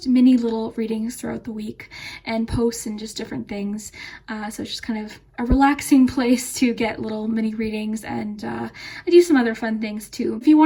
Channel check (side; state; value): both; identical; correlation 1.00